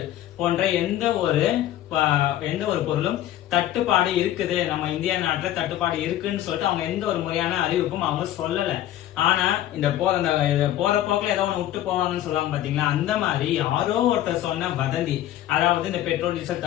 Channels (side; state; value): right; quieter; 13.0 dB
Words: போன்ற எந்த ஒரு பொருளும் தட்டுப்பாடு இருக்குது, நம்ம இந்தியா நாட்டுல தட்டுப்பாடு இருக்குன்னு சொல்லிட்டு அவங்க எந்த ஒரு முறையான அறிவிப்பும் அவங்க சொல்லல. ஆனா இந்த போற போக்குல ஏதோ ஒண்ணு விட்டு போவாங்கன்னு சொல்லுவாங்க பாத்தீங்களா, அந்த மாதிரி யாரோ ஒருத்தர் சொன்ன வதந்தி, அதாவது இந்த பெட்ரோல் டீசல்